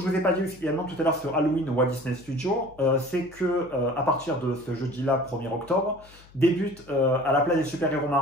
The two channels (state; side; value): noise; left; hum, 25 dB below the sound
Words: ne vous ai pas dit également tout à l'heure sur Halloween au Walt Disney Studio, c'est que à partir de ce jeudi-là, 1er octobre, débute à la place des super-héros